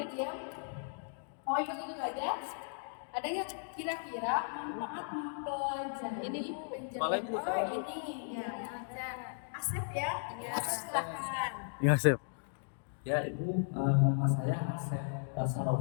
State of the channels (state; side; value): silent; right; digital silence